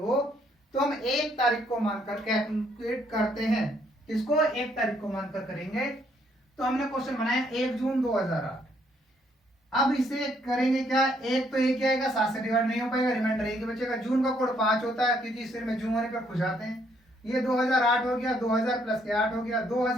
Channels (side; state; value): both; normal; correlation 0.69